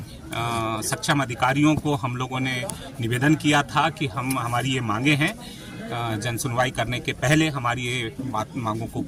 सक्षम अधिकारियों को हम लोगों ने निवेदन किया था कि हमारी ये मांगे हैं, जन सुनवाई करने के पहले हमारी ये मांगों को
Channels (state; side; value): identical; both; correlation 1.00